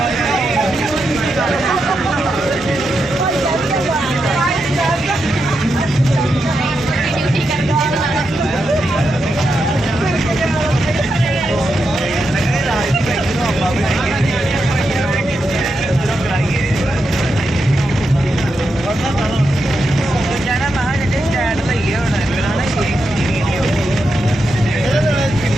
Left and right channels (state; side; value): normal; both; correlation 0.86